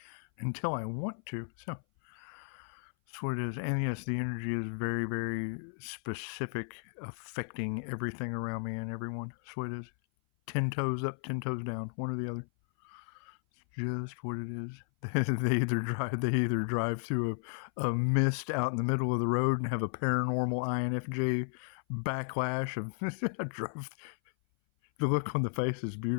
until I want to. So that's what it is. And yes, the energy is very, very specific, affecting everything around me and everyone. That's what it is. 10 toes up, 10 toes down, one or the other. It's just what it is. They either drive through a mist out in the middle of the road and have a paranormal INFJ backlash of the look on the face is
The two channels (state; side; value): silent; right; 55 dB below the other